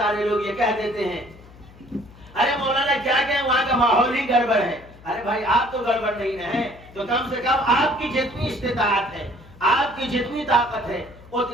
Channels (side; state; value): left; noise; hum, 22 dB below the sound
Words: لوگ یہ کہہ دیتے ہیں ارے مولانا کیا کہیں وہاں کا ماحول ہی گڑبڑ ہے، ارے بھائی آپ تو گڑبڑ نہیں ہیں تو کم سے کم آپ کی جتنی استطاعت ہے، آپ کی جتنی طاقت ہے